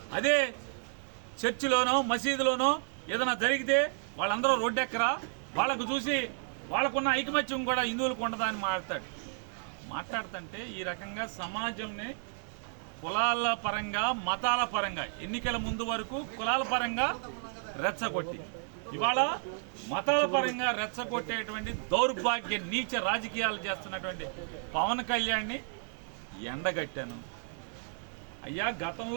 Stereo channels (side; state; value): left; silent; 56 dB below the other